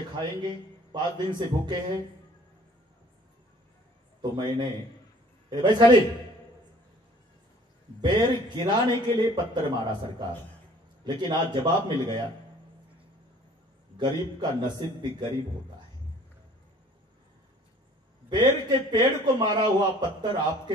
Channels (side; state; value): both; normal; correlation 0.53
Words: खाएंगे. 5 दिन से भूखे हैं. तो मैंने भाई खाली बेर गिराने के लिए पत्थर मारा सरकार. लेकिन आज जवाब मिल गया. गरीब का नसीब भी गरीब होता है. बेर के पेड़ को मारा हुआ पत्थर